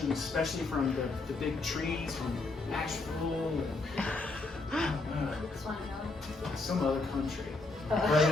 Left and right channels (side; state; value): right; quieter; 3.4 dB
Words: especially from the big trees from Nashville and some other country. But